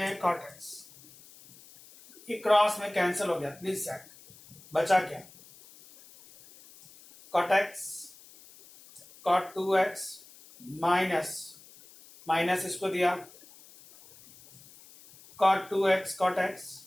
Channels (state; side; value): noise; left; hiss, 23 dB below the sound